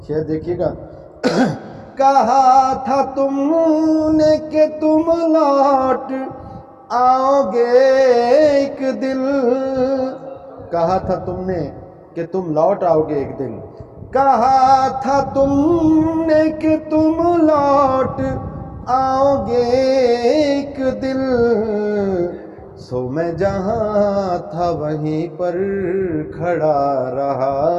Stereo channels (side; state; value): both; identical; correlation 1.00